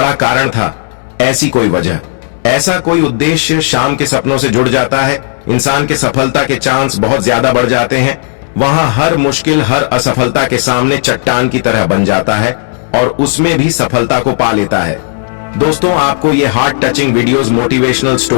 कारण था। ऐसी कोई वजह, ऐसा कोई उद्देश्य शाम के सपनों से जुड़ जाता है। इंसान के सफलता के चांस बहुत ज्यादा बढ़ जाते हैं। वहां हर मुश्किल हर असफलता के सामने चट्टान की तरह बन जाता है और उसमें भी सफलता को पा लेता है। दोस्तों आपको ये heart touching videos motivational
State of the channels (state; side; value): silent; right; digital silence